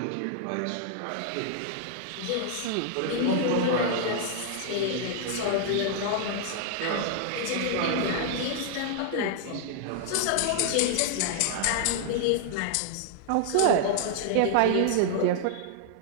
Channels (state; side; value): different; both; correlation -0.01